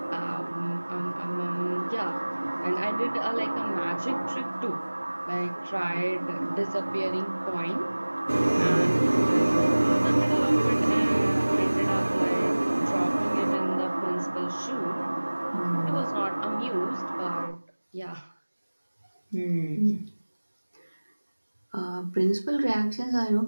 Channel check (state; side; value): inverted; both; correlation -1.00